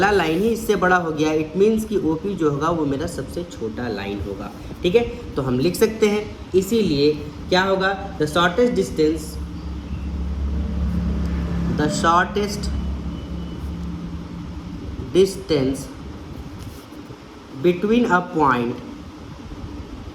लाइन ही इससे बड़ा हो गया, इट मीन्स कि OP जो होगा वो मेरा सबसे छोटा लाइन होगा, ठीक है। तो हम लिख सकते हैं, इसीलिए क्या होगा? The shortest distance between a point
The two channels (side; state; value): both; identical; correlation 1.00